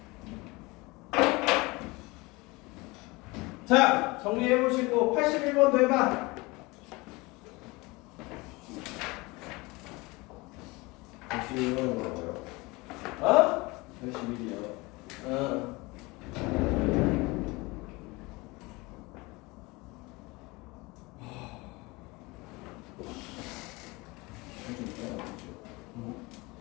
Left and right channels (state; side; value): quieter; right; 23.9 dB